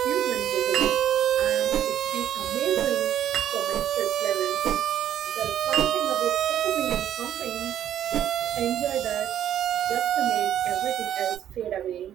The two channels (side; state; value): left; quieter; 10.7 dB